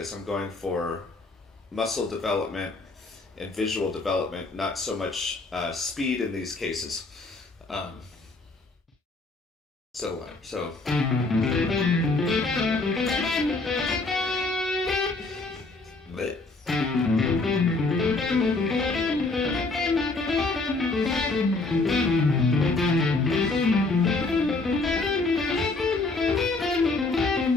I'm going for muscle development and visual development, not so much speed in these cases. Um, so. Bleh.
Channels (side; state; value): right; quieter; 3.4 dB